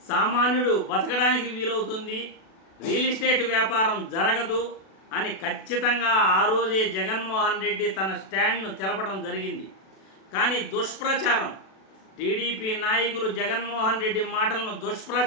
సామాన్యుడు బతకడానికి వీలవుతుంది, రియల్ ఎస్టేట్ వ్యాపారం జరగదు అని ఖచ్చితంగా ఆ రోజే జగన్మోహన్ రెడ్డి తన స్టాండ్ను తెలపడం జరిగింది. కానీ దుష్ప్రచారం, టీడీపీ నాయకులు జగన్మోహన్ రెడ్డి మాటలను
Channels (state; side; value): late; right; 37 ms